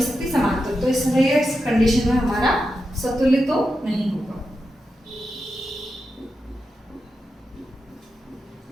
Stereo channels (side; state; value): both; normal; correlation 0.88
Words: सकती, समांतर, तो इसलिए इस कंडीशन में हमारा सतुल्य तो नहीं होगा।